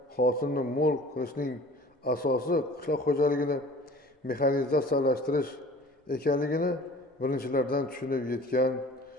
hosilni mo'l qilishning asosi qishloq xo'jaligini mexanizatsiyalashtirish ekanligini birinchilardan tushunib yetgan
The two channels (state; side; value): normal; both; correlation 0.46